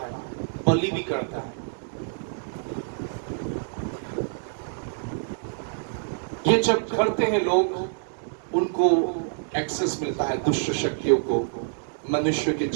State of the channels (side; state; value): left; silent; digital silence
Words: बलि भी करता है। ये जब करते हैं लोग, उनको एक्सेस मिलता है दुष्ट शक्तियों को मनुष्य के